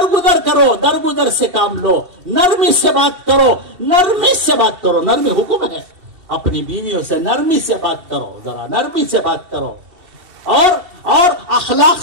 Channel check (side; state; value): left; late; 2.7 ms